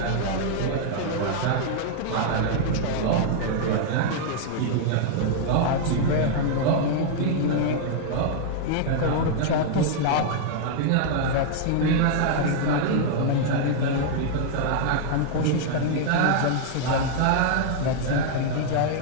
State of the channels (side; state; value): both; different; correlation -0.01